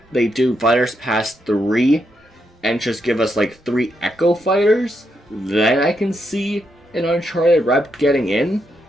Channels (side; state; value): both; normal; correlation 0.81